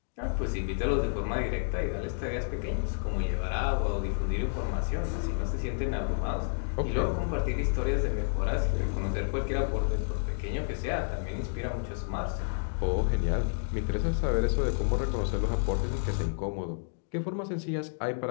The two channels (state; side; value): silent; right; digital silence